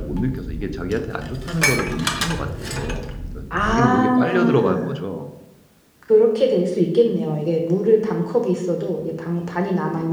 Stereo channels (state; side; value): identical; both; correlation 1.00